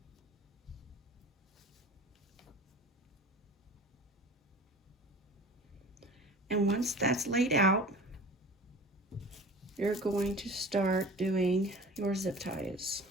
And once that's laid out, you're going to start doing your zip ties.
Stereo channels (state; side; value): normal; both; correlation 0.40